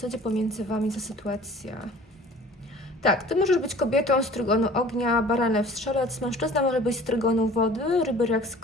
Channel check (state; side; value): normal; both; correlation 0.47